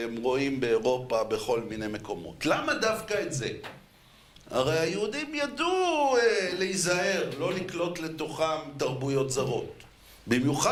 רואים באירופה בכל מיני מקומות? למה דווקא את זה? הרי היהודים ידעו להיזהר, לא לקלוט לתוכם תרבויות זרות.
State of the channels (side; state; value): both; identical; correlation 1.00